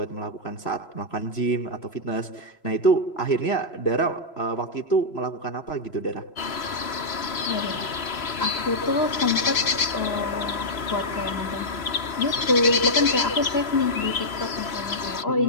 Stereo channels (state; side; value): late; right; 3.0 ms